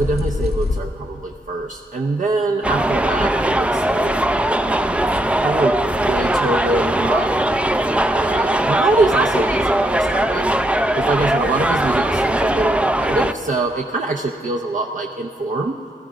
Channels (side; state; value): both; normal; correlation 0.77